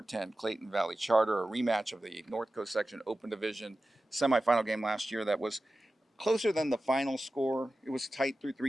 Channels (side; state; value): both; normal; correlation 0.94